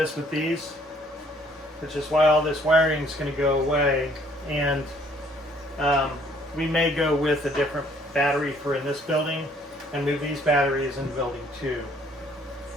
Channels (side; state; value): both; normal; correlation 0.62